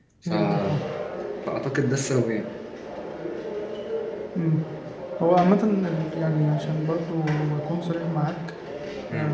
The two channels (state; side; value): identical; both; correlation 1.00